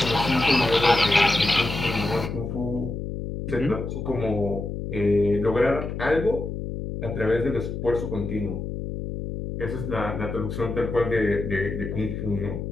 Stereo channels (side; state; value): left; noise; hum, 5 dB below the sound